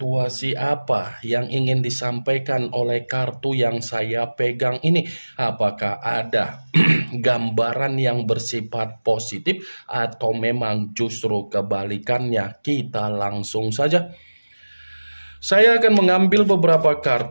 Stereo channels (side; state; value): both; inverted; correlation -1.00